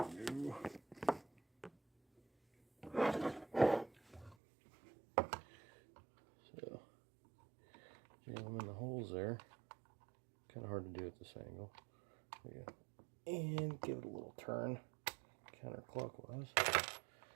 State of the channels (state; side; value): drops out; left; at 4.4 s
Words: So, jam them in the holes there. Kind of hard to do at this angle. There you go. And give it a little turn, counterclockwise.